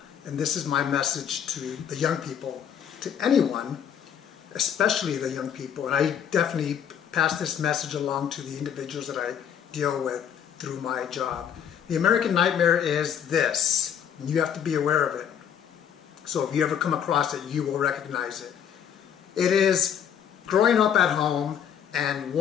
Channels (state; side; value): quieter; right; 8.7 dB